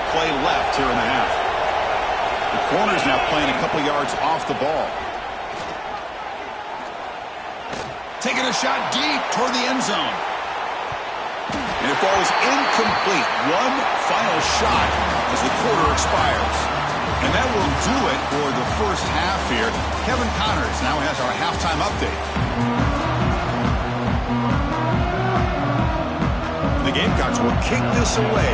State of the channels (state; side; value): identical; both; correlation 1.00